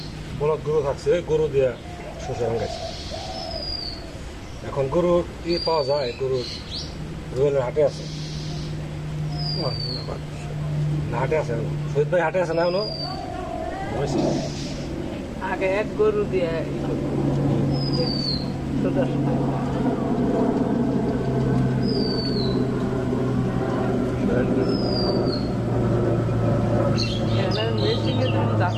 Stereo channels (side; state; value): both; identical; correlation 1.00